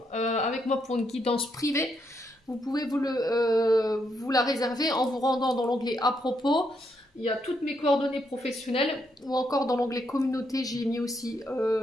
avec moi pour une guidance privée, vous pouvez vous la réserver en vous rendant dans l'onglet à propos. Il y a toutes mes coordonnées professionnelles ou encore dans l'onglet communauté, j'ai mis aussi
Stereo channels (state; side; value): normal; both; correlation 0.77